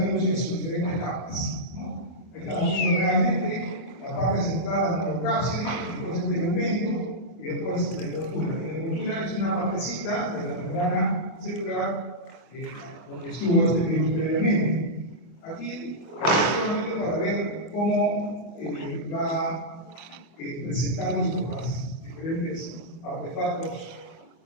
virus en sus diferentes capas, ¿no? Estamos viendo realmente la parte central del neurocápside, después el tegumento y después la envoltura. La envoltura es una partecita de la membrana celular donde estuvo este virus previamente. Aquí, solamente para ver cómo va presentándose por las diferentes artefactos,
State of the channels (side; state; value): right; late; 24 ms